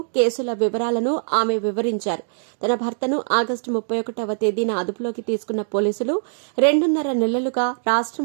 కేసుల వివరాలను ఆమె వివరించారు. తన భర్తను ఆగస్టు 31వ తేదీన అదుపులోకి తీసుకున్న పోలీసులు 2.5 నెలలుగా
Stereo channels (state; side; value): silent; left; digital silence